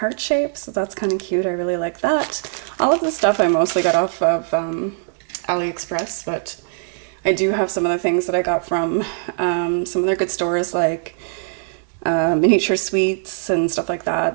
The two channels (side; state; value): left; silent; digital silence